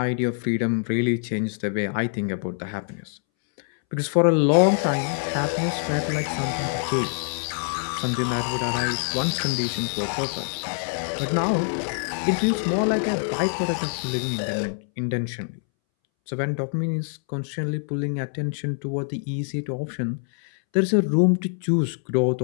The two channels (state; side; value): silent; right; 62 dB below the other